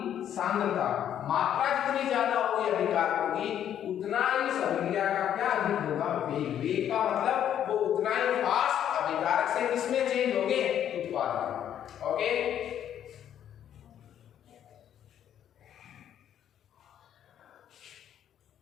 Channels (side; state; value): right; quieter; 10.1 dB